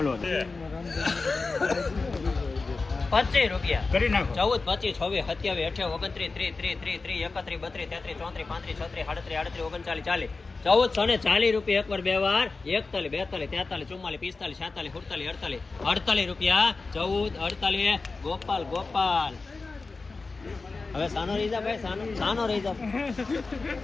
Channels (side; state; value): right; quieter; 3.9 dB